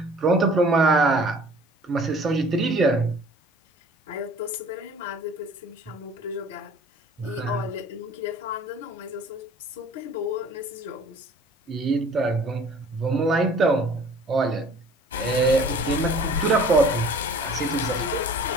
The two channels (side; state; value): both; normal; correlation 0.50